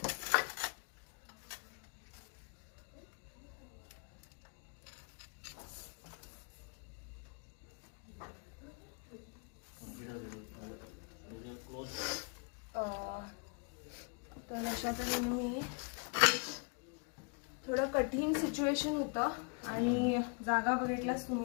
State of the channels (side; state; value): right; quieter; 38.2 dB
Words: तर अशा तऱ्हेने मी थोडं कठीण सिच्युएशन होतं आणि जागा बघितलाच